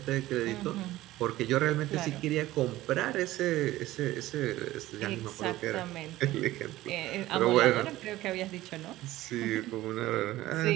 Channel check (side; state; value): left; quieter; 16.3 dB